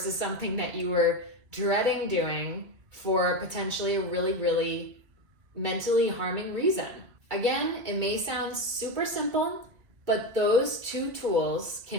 something that you were dreading doing for potentially a really, really mentally harming reason. Again, it may sound super simple, but those 2 tools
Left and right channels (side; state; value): left; late; 2.0 ms